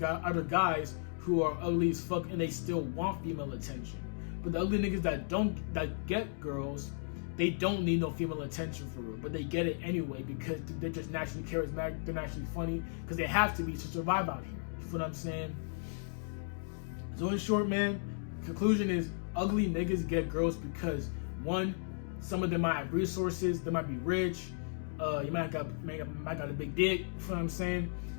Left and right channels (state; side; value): silent; right; digital silence